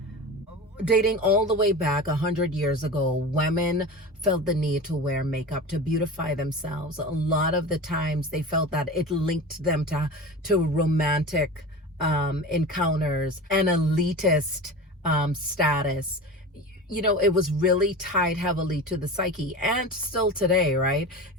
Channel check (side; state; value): both; normal; correlation 0.31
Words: Dating all the way back 100 years ago, women felt the need to wear makeup to beautify themselves. A lot of the times they felt that it linked them to romantic encounters and elitist status. You know, it was really tied heavily to the psyche, and still today, right?